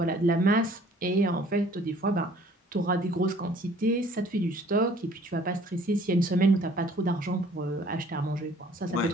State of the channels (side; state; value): both; normal; correlation 0.55